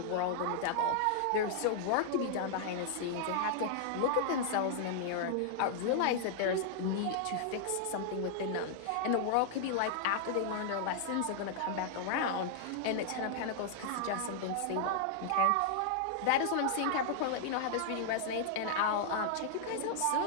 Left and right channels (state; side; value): different; both; correlation -0.01